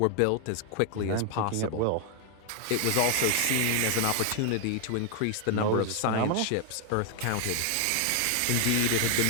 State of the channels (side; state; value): both; different; correlation 0.00